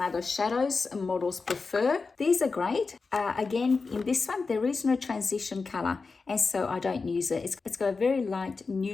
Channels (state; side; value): quieter; right; 4.4 dB